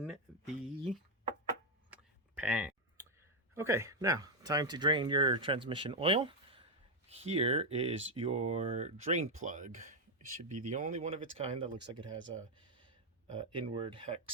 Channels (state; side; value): normal; both; correlation 0.02